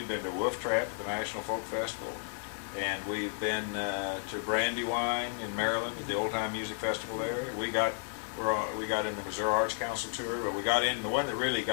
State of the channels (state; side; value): silent; right; 56 dB below the other